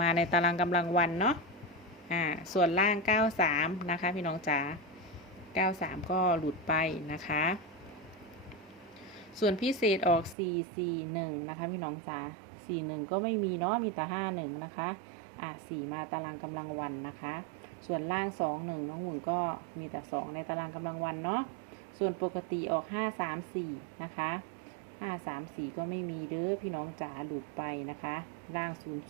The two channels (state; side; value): drops out; left; at 10.4 s